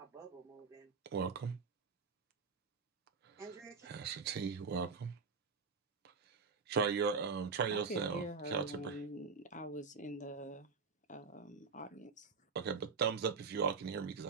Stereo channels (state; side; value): quieter; left; 5.0 dB